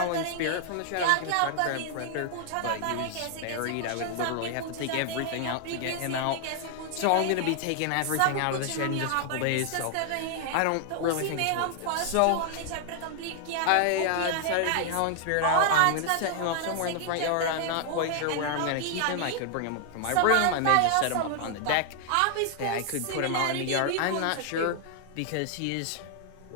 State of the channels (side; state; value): both; different; correlation 0.00